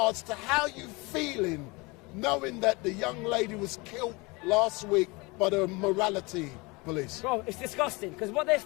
to how you feeling knowing that the young lady was killed last week by the morality police. Bro, it's disgusting, because what they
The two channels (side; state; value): right; quieter; 25.8 dB